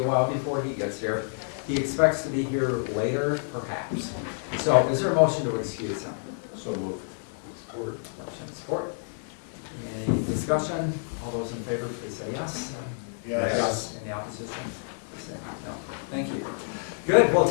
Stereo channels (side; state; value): right; silent; digital silence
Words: while before he gets here. He expects to be here later, perhaps. So is there a motion to excuse him? So moved. Support. Motion, support. Any discussion? All those in favor, please say yes. Yes. Any opposition? Please say no. Thank you. Good. Well,